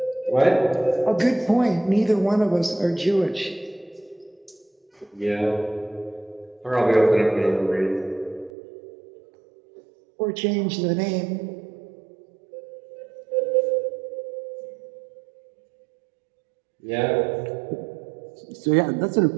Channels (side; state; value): left; drops out; at 8.5 s